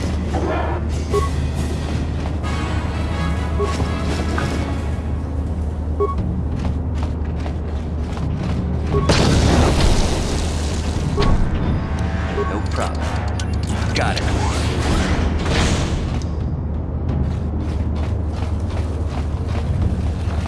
No problem. Got it.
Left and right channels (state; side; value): identical; both; correlation 1.00